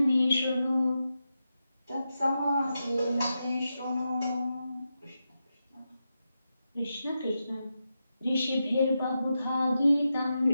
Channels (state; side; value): inverted; both; correlation -0.88